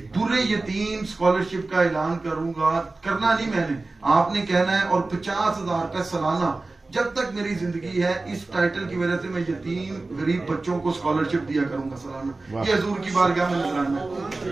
दुर्रे यतीम स्कॉलरशिप का ऐलान करूंगा। करना नहीं मैंने, आपने कहना है, और 50,000 रुपए सालाना जब तक मेरी जिंदगी है, इस टाइटल की वजह से मैं यतीम गरीब बच्चों को स्कॉलरशिप दिया करूंगा सालाना। ये हजूर की बारगाह में नजराना है।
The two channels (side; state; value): left; quieter; 3.3 dB